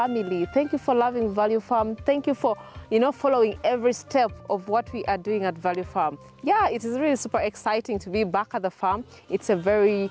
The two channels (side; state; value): both; identical; correlation 1.00